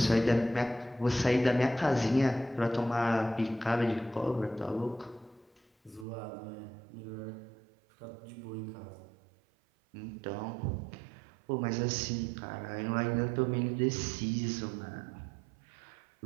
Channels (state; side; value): drops out; left; at 6.1 s